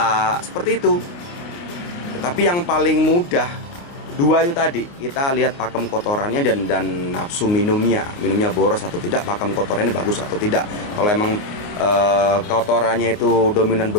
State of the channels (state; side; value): late; right; 29 ms